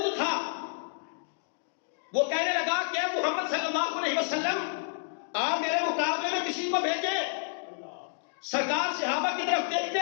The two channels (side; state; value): right; silent; digital silence